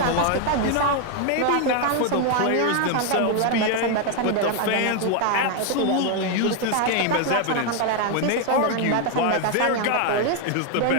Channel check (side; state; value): both; different; correlation 0.01